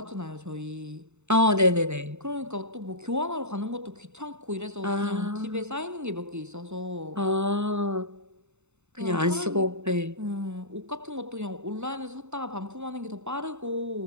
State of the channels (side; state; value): left; late; 0.82 ms